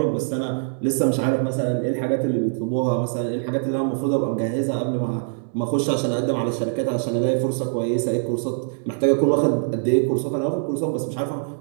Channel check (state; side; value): silent; left; digital silence